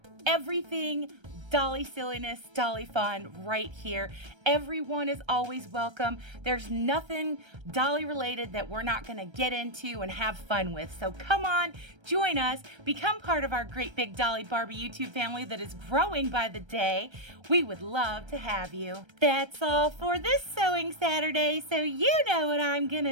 everything Dolly silliness, Dolly fun right here. Everyone is always welcome. There's nothing Dolly related that we're not gonna get into and have fun with. So come on, join us, become part of our great big Dolly Barbie YouTube family that is growing by the day. We would love to have you. That's all for this Sewing Saturday, so you know what I'm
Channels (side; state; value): left; late; 1.3 ms